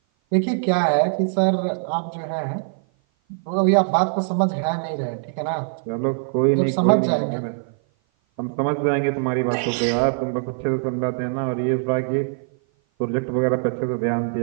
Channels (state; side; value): silent; left; 56 dB below the other